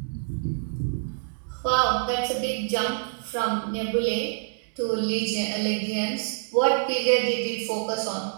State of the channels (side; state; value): left; silent; digital silence